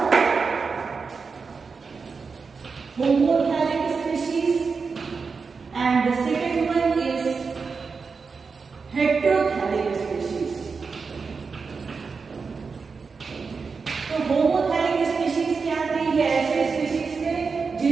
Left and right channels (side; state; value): left; quieter; 5.0 dB